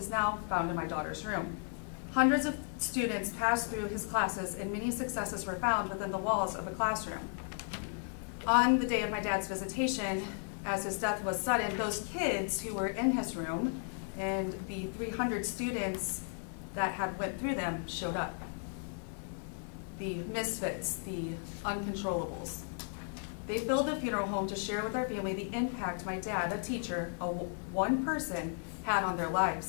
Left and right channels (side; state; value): right; silent; 55 dB below the other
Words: now found in my daughter's room. Hundreds of students passed through his classes and many successes were found within the walls of the classroom. On the day of my dad's visitation, as his death was sudden, those kids who were in his room and the 300 students that had went through them showed up. The misfits, the uncontrollables. They filled the funeral home to share with our family the impact my dad, a teacher, one person, had on their